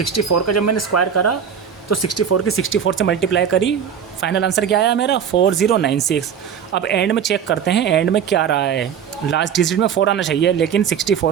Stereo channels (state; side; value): quieter; left; 7.9 dB